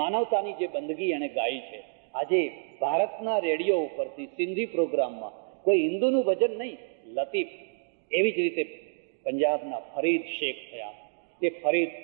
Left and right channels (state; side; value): silent; left; digital silence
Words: માનવતાની જે બંદગી એણે ગાઈ છે. આજે ભારતના રેડિયો ઉપરથી સિંધી પ્રોગ્રામમાં કોઈ હિન્દુનું ભજન નહીં, લતીફ. એવી જ રીતે પંજાબના ફરીદ શેખ થયા.